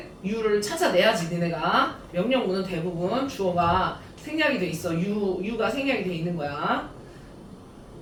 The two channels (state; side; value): identical; both; correlation 1.00